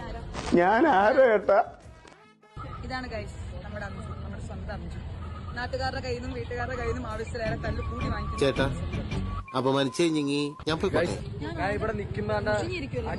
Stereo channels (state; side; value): identical; both; correlation 1.00